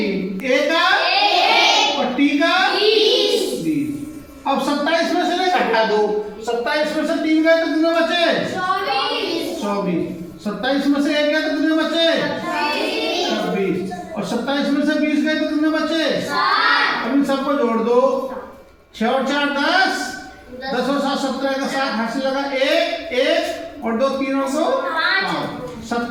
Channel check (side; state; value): both; identical; correlation 1.00